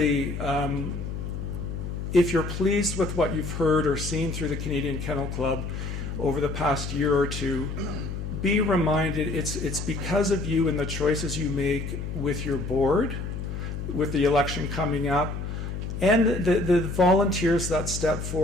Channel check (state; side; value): noise; left; hum, 5 dB below the sound